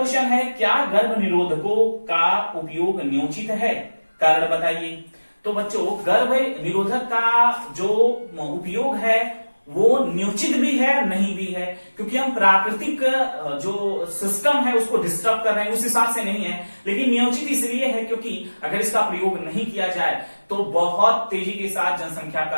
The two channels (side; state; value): both; inverted; correlation -1.00